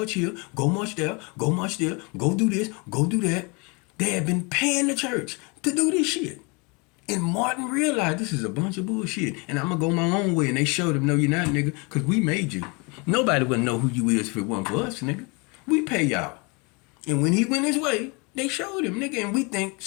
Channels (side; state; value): right; quieter; 29.9 dB